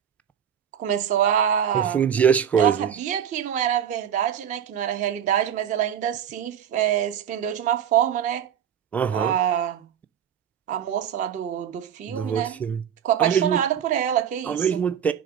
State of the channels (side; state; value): left; quieter; 8.7 dB